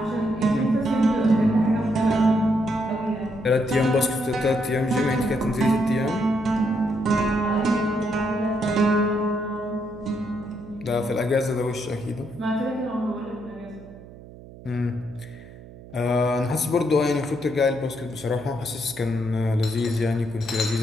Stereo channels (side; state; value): right; noise; hum, 18 dB below the sound